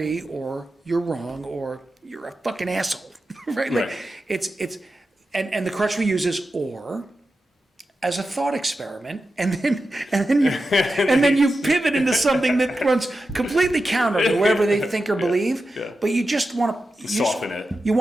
or you're wrong or you're a fucking asshole, right? Like it's and the crutch we use is or, as a thought experiment, and then you pivot into something that runs completely counter to whatever they think or believe. Yeah. But you just want to soften it. You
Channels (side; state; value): both; normal; correlation 0.91